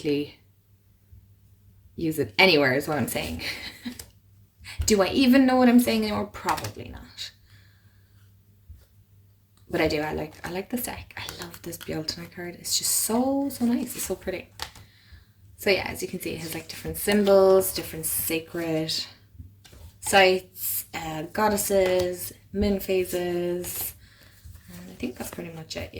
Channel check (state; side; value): identical; both; correlation 1.00